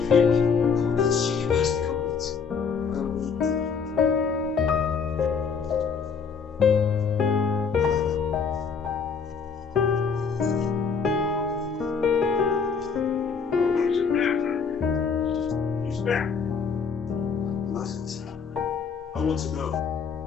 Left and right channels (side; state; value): right; quieter; 5.8 dB